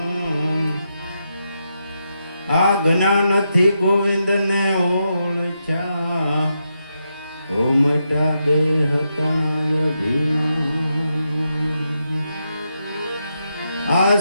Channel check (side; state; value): both; inverted; correlation -0.84